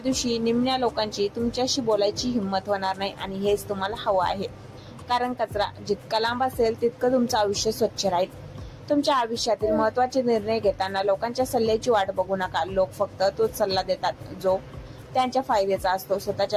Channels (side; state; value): both; identical; correlation 1.00